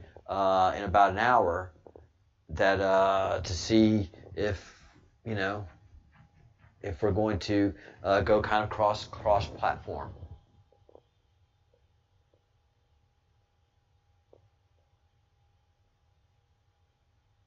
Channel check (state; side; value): identical; both; correlation 1.00